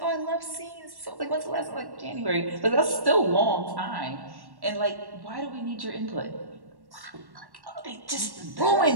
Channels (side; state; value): left; late; 1.1 ms